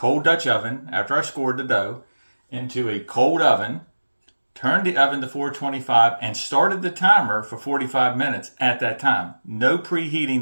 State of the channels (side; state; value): both; inverted; correlation -1.00